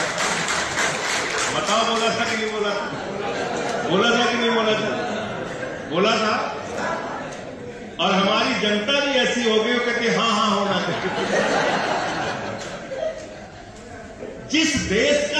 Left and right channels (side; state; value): both; identical; correlation 1.00